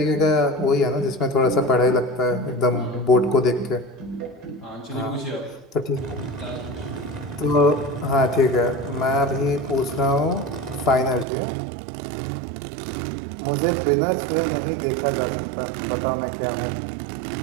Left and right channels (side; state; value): left; drops out; at 11.2 s